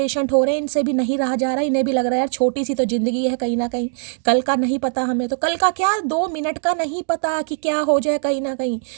हो रहे हैं, इनसे भी नहीं रहा जा रहा। इन्हें भी लग रहा है यार छोटी सी तो जिंदगी है कहीं ना कहीं, कल का नहीं पता हमें, तो कल का क्या 2 मिनट का नहीं पता कि क्या हो जाए कहीं ना कहीं।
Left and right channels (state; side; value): silent; left; digital silence